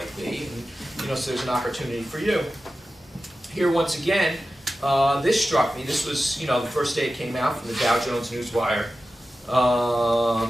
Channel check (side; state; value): both; normal; correlation 0.94